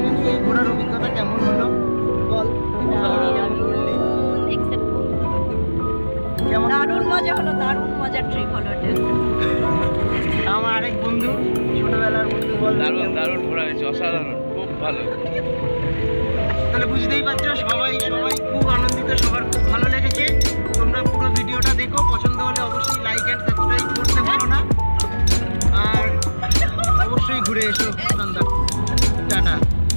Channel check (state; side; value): inverted; both; correlation -1.00